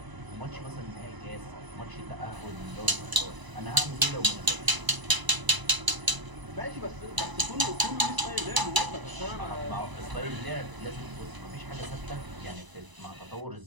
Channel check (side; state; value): left; late; 1.0 ms